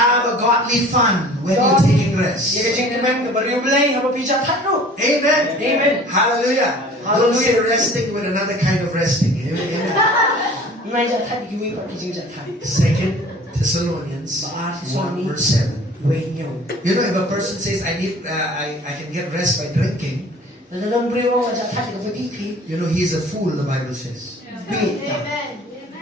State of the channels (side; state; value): both; normal; correlation 0.47